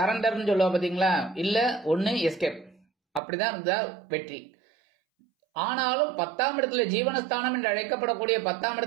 சொல்லுவா பாத்தீங்களா, இல்ல ஒண்ணு எஸ்கேப், அப்படிதான் இருந்தா வெற்றி. ஆனாலும் 10ஆம் இடத்துல ஜீவனஸ்தானம் என்று அழைக்கப்படக்கூடிய 10ஆம்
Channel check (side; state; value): left; drops out; at 3.2 s